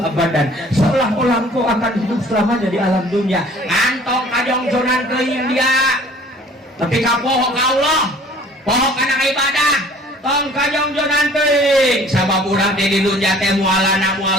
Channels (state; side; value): normal; both; correlation 0.52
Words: abadan seolah-olah engkau akan hidup selamanya di alam dunia antong kajongjonan ke India tapi kapoho ka Allah poho kana ibadah tong kajongjonan teuing sabab urang teh di dunya teh mualana